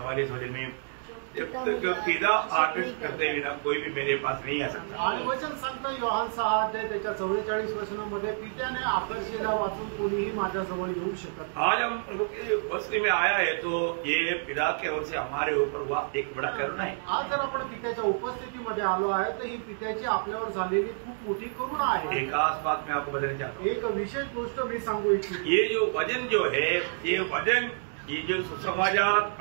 वचन में, जब तक पिता आदेश करते बिना कोई भी मेरे पास नहीं आ सकता। आणि वचन सांगतं योहान 6 अध्याय त्याच्या 44 वचनामध्ये, पित्याने आकर्षिला वाचून कोणीही माझ्याजवळ येऊ शकत। आज हम प्रभु की उपस्थिति में आया है तो ये पिता की ओर से हमारे ऊपर हुआ एक बड़ा करुणा है। आज जर आपण पित्याच्या उपस्थितीमध्ये आलो आहे तर ही पित्याची आपल्यावर झालेली खूप मोठी करुणा आहे। एक खास बात मैं आपको बताना चाहता हूँ। एक विशेष गोष्ट मी सांगू इच्छितो। ये जो वचन जो है, ये वचन, ये जो सुसमाचार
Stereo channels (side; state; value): left; silent; digital silence